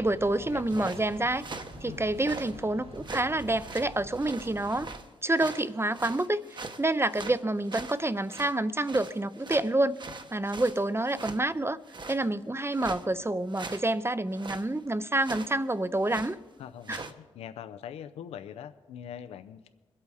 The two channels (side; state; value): both; normal; correlation 0.74